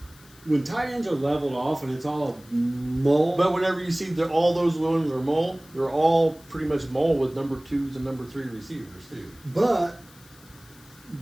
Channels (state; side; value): noise; left; hiss, 25 dB below the sound